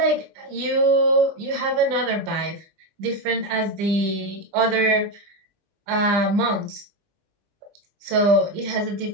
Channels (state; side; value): late; left; 20 ms